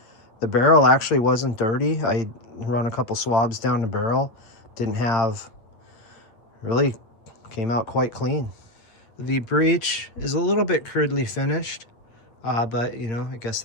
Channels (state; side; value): late; right; 8.8 ms